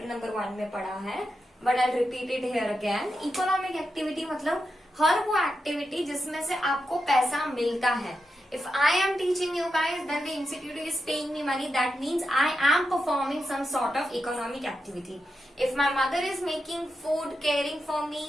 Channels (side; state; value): both; normal; correlation 0.87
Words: नंबर 1 में पढ़ा है, but I repeat it here again. Economic activity मतलब हर वो एक्टिविटी जिसमें से आपको पैसा मिलता है. If I am teaching you guys, then the institute is paying me money. That means I am performing some sort of economic activity. If my mother is making food, caring for me,